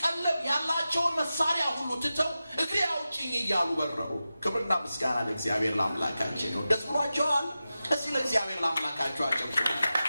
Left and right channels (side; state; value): both; inverted; correlation -0.93